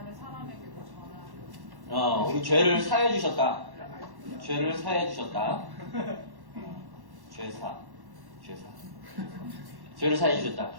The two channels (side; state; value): left; late; 1.1 ms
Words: 사람에게도 전하는. 우리 죄를 사해 주셨다. 죄를 사해 주셨다. 죄사. 죄를 사해 주셨다.